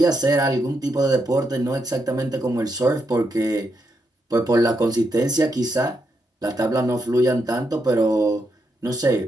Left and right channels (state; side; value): normal; both; correlation 0.81